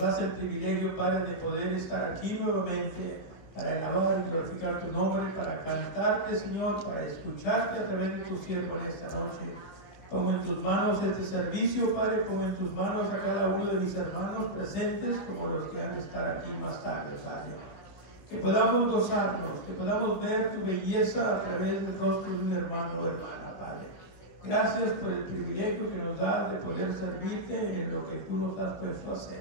el privilegio, Padre, de poder estar aquí nuevamente para alabar y glorificar tu nombre, para cantarte, Señor, para escucharte a través de tu siervo en esta noche. Pongo en tus manos este servicio, Padre, pongo en tus manos a cada uno de mis hermanos presentes, como los que han de estar aquí más tarde, Padre. Que podamos gozarnos, que podamos ver tu belleza a través del rostro de un hermano o hermana, Padre. Gracias por el privilegio que nos das de poder servirte en lo que tú nos has puesto a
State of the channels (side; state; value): right; late; 16 ms